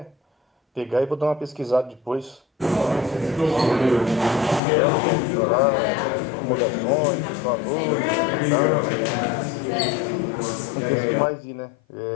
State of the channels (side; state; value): right; drops out; at 4.6 s